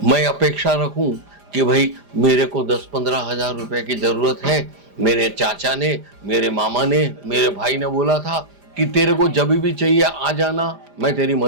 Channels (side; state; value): left; late; 5.0 ms